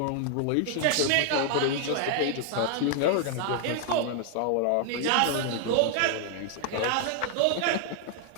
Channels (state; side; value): different; both; correlation 0.00